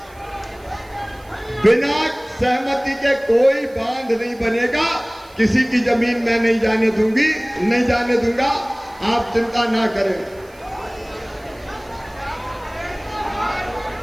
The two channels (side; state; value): right; noise; hiss, 28 dB below the sound